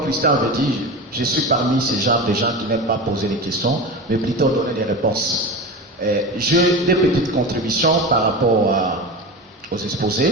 Christian avait dit, je suis parmi ces genres de gens qui n'aiment pas poser des questions, mais plutôt donner des réponses. J'ai des petites contributions par rapport aux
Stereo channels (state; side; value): normal; both; correlation 0.27